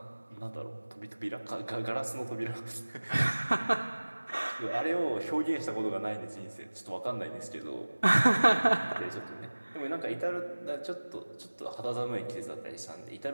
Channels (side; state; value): both; inverted; correlation -1.00